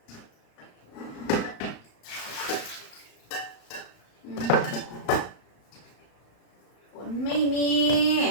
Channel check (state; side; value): late; right; 35 ms